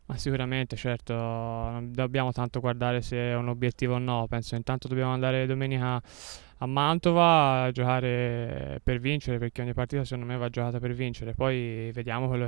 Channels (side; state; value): left; quieter; 32.1 dB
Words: Ma sicuramente, certo, non dobbiamo tanto guardare se è un obiettivo o no, penso intanto dobbiamo andare domenica a Mantova a giocare per vincere, perché ogni partita secondo me va giocata per vincere, poi vediamo quello